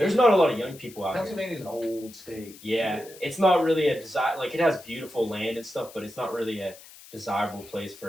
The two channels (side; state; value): left; noise; hiss, 20 dB below the sound